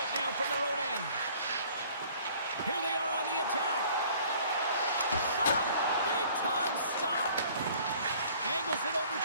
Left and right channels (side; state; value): both; inverted; correlation -0.54